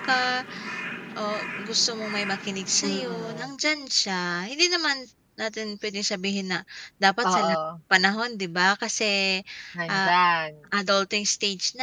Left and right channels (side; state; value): both; identical; correlation 1.00